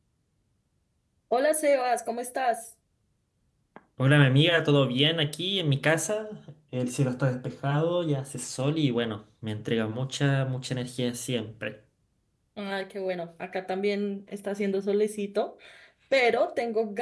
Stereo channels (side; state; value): both; identical; correlation 1.00